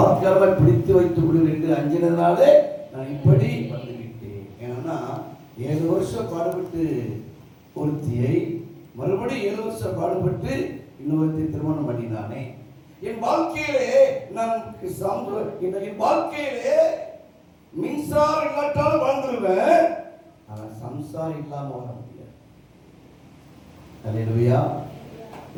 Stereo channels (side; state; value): both; identical; correlation 1.00